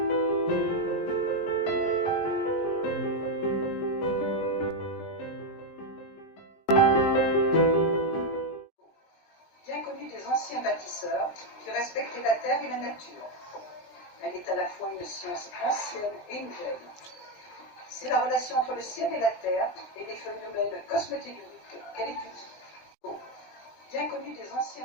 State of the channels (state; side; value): late; right; 19 ms